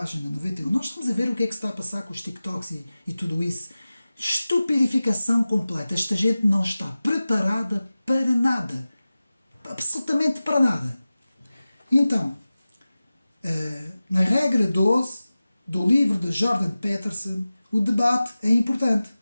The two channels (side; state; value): both; inverted; correlation -0.96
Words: 91. Nós estamos a ver o que é que se está a passar com os TikToks e tudo isso. Estupidificação completa. Esta gente não está preparada para nada. Absolutamente para nada. Então, na regra 12 do livro de Jordan Peterson, o debate é importante.